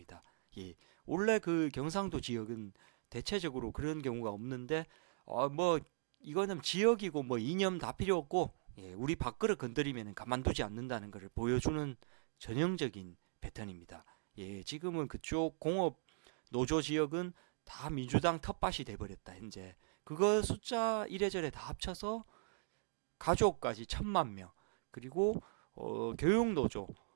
원래 그 경상도 지역은 대체적으로 그런 경우가 없는데 뭐 이거는 지역이고 뭐 이념 다 필요 없고 우리 밥그릇 건드리면 가만두지 않는다는 것을 보여주는 전형적인 패턴입니다. 지금은 그쪽 공업 노조 지역은 다 민주당 텃밭이 돼버렸다. 현재 그거 숫자 이래저래 다 합쳐서 가족까지 1000만 명 그리고 교육 노조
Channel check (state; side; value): silent; left; digital silence